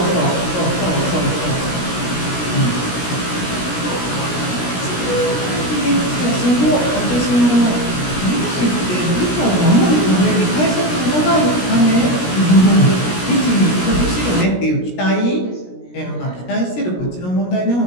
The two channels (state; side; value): late; right; 17 ms